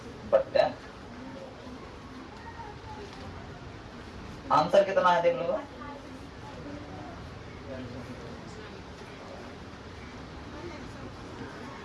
आंसर कितना है देख लो।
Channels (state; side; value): identical; both; correlation 1.00